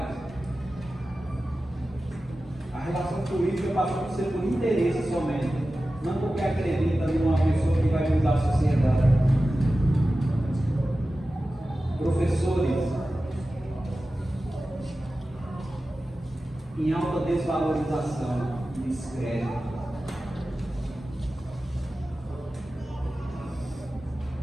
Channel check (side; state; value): both; normal; correlation 0.94